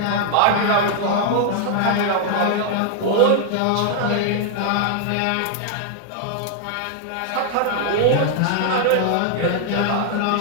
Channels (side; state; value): both; different; correlation 0.00